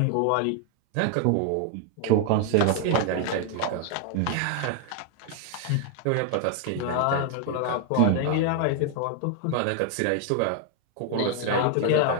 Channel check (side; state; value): both; different; correlation 0.00